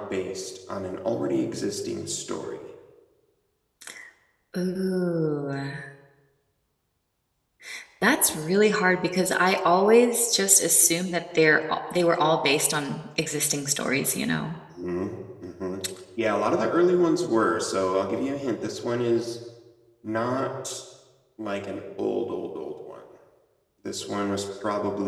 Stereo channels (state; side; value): identical; both; correlation 1.00